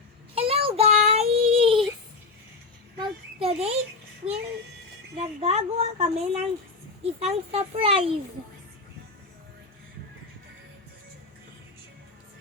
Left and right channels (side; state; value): right; quieter; 4.1 dB